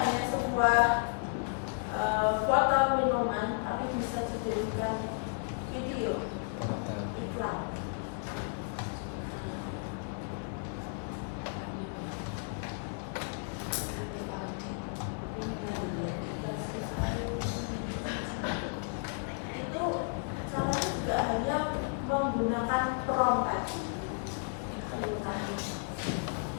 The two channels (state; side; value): silent; right; 55 dB below the other